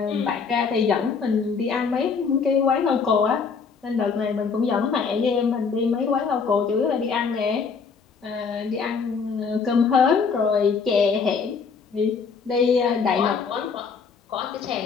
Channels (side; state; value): right; quieter; 5.5 dB